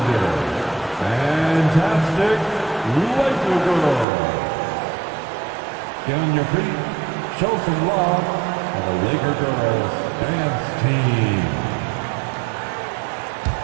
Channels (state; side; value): drops out; left; at 4.0 s